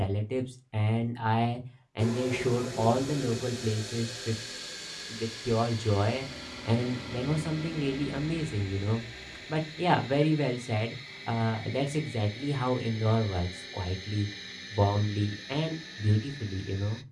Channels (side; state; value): both; identical; correlation 1.00